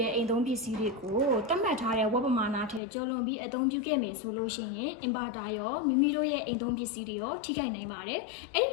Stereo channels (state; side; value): drops out; right; at 2.8 s